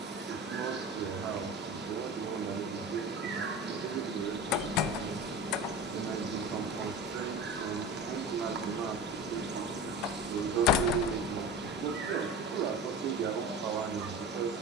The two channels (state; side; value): normal; both; correlation 0.32